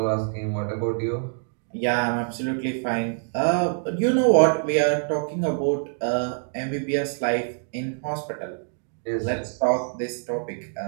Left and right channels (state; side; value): silent; left; 62 dB below the other